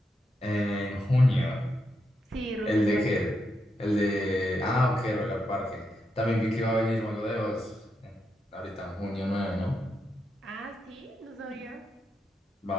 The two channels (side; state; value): both; normal; correlation 0.83